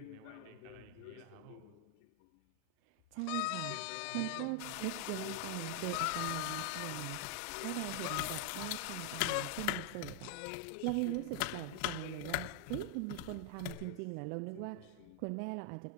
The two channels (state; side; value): different; both; correlation 0.00